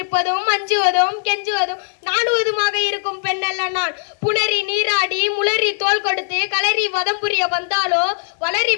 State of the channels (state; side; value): silent; right; digital silence